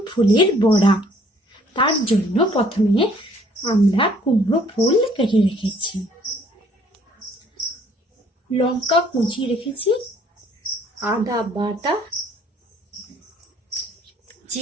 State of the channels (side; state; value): both; normal; correlation 0.60